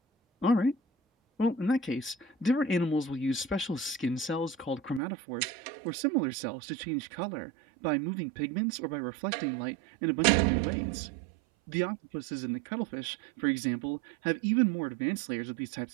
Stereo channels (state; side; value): drops out; left; at 5.0 s